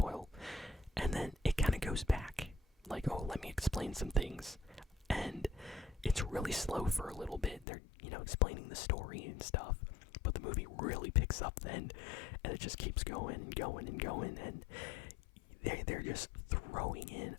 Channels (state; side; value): drops out; right; at 7.7 s